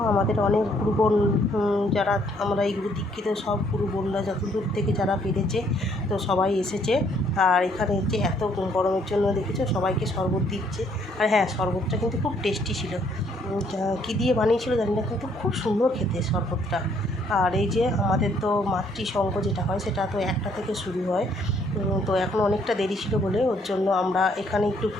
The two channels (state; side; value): normal; both; correlation 0.66